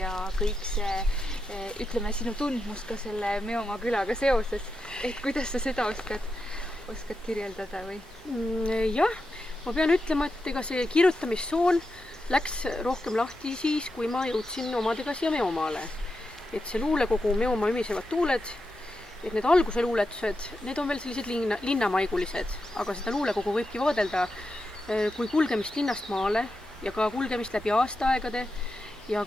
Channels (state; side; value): normal; both; correlation 0.88